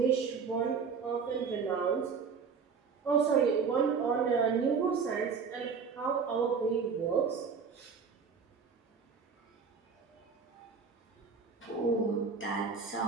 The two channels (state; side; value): quieter; left; 5.7 dB